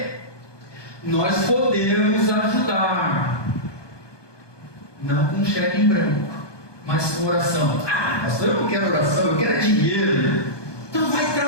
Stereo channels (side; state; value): right; late; 1.2 ms